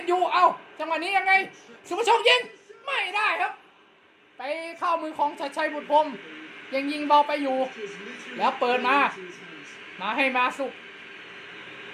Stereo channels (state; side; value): identical; both; correlation 1.00